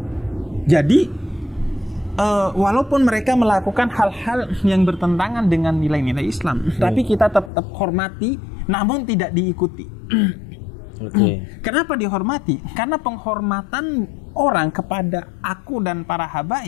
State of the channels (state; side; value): drops out; right; at 7.5 s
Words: Jadi, walaupun mereka melakukan hal-hal yang bertentangan dengan nilai-nilai Islam, tapi kita tetap hormati, namun tidak diikuti. Kenapa dihormati? Karena penghormatan orang kepada aku dan para